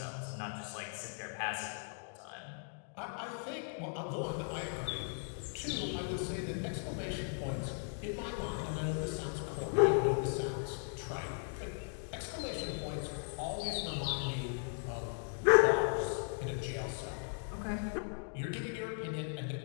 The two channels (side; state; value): right; silent; 53 dB below the other